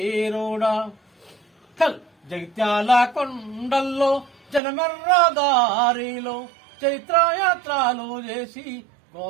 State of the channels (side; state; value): left; drops out; at 4.6 s